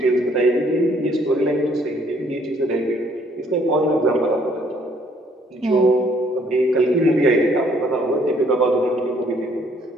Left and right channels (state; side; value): normal; both; correlation 0.64